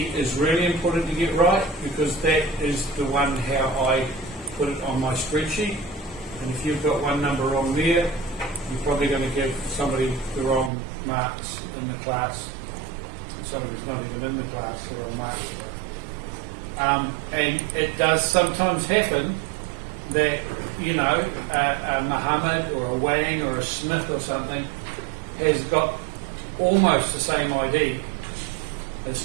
is really important to get right, because that is the one how I put it on my spreadsheet. And if you've got one number wrong there, you're probably going to give somebody the wrong marks in the class. Somebody's not even in the class, the wrong marks. And it does sometimes happen that, you know, a Muhammad or a Wang or a Smith or something has got almost the same ID.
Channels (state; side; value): drops out; left; at 10.7 s